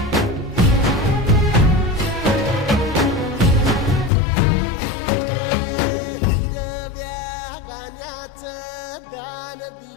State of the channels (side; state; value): right; drops out; at 4.1 s